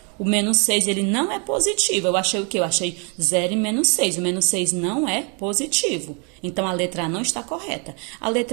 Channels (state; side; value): quieter; left; 36.0 dB